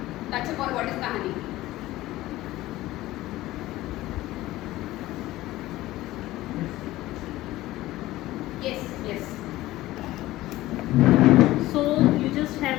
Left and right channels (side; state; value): right; quieter; 16.8 dB